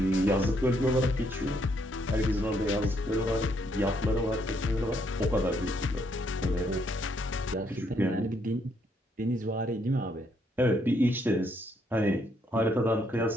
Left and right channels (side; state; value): both; normal; correlation 0.72